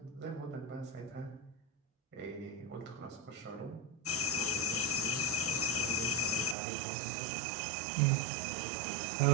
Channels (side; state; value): left; drops out; at 6.6 s